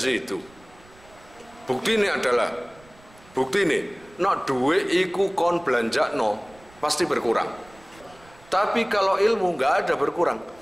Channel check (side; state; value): right; noise; rumble, 26 dB below the sound